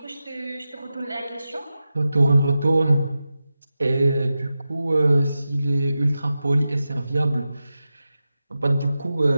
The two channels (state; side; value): inverted; both; correlation -0.92